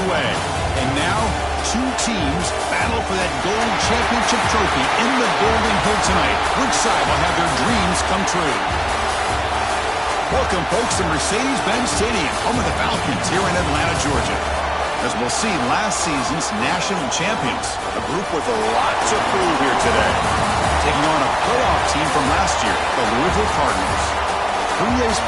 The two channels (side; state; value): both; identical; correlation 1.00